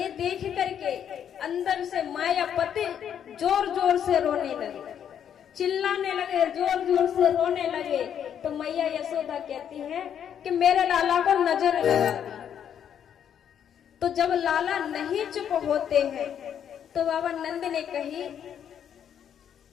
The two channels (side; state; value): right; quieter; 8.9 dB